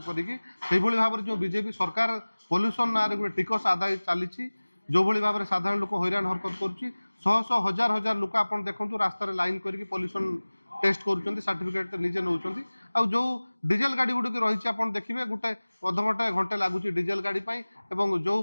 करी भाव में जो बीजेपी सरकार पॉल्यूशन ना गोटे टिकस आदाय चली जो भाव में साधारण लोक हैरान हरकत कर शह शह हजार हजार लोक आप देखते रास्तार लाइन करके पॉल्यूशन टेस्ट कर सर्टिफिकेट निजे नौ जो डीजेल गाड़ी गुड़िक रही आप देखिए गोटे अधघंटे घंटे लगुच डीजेल गाड़ी एवं जो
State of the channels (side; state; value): both; inverted; correlation -1.00